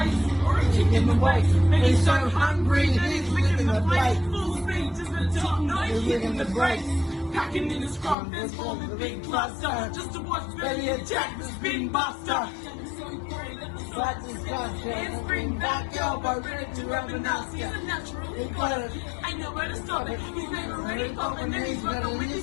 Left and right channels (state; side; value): drops out; right; at 8.2 s